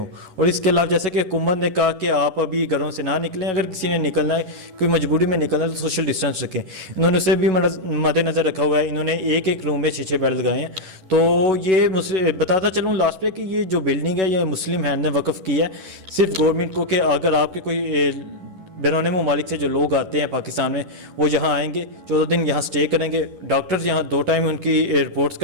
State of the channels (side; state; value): left; late; 11 ms